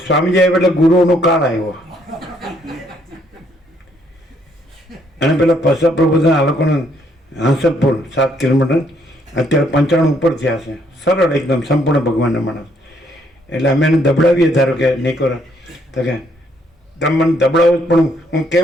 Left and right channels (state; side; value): normal; both; correlation 0.69